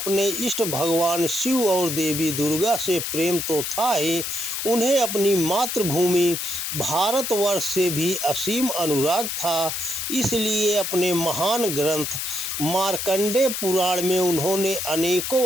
इष्ट भगवान शिव और देवी दुर्गा से प्रेम तो था ही, उन्हें अपनी मातृभूमि भारतवर्ष से भी असीम अनुराग था। इसलिए अपने महान ग्रंथ मार्कंडेय पुराण में उन्होंने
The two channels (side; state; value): left; noise; hiss, 3 dB below the sound